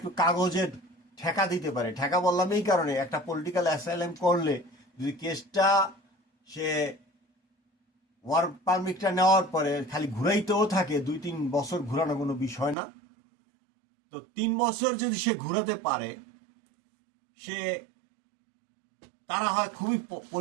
কাগজের ঠেকা দিতে পারে, ঠেকা বললাম এই কারণে, একটা পলিটিক্যাল অ্যাসাইলাম করলে যদি কেসটা সে ওয়ার্ক পারমিটটা নেওয়ার পরে খালি ঘুরাইতেও থাকে, 2-3 বছর ঘুরানো কোনো বিষয় না, তো 3 বছর যদি সে ঘুরাতে পারে, সে তারা হয় খুবই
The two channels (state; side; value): drops out; left; at 12.8 s